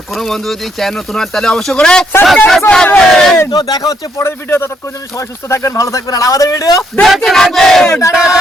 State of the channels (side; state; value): both; normal; correlation 0.73